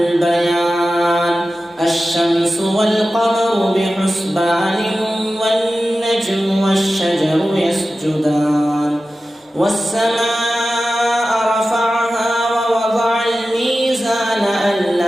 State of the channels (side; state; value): both; normal; correlation 0.94